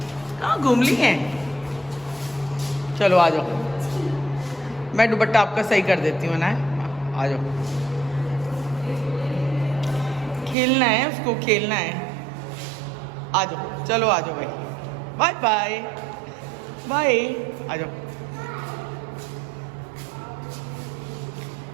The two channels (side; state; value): left; drops out; at 10.6 s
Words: कहाँ घूम ली हैं? चलो आ जाओ, मैं दुपट्टा आपका सही कर देती हूँ ना। आ जाओ, खेलना है उसको, खेलना है। आ जाओ, चलो आ जाओ भाई, बाय बाय बाय, आ जाओ।